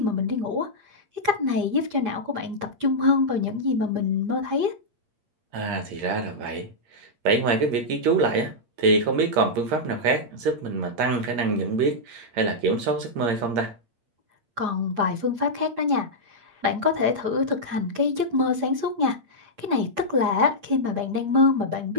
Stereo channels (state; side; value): late; left; 8.6 ms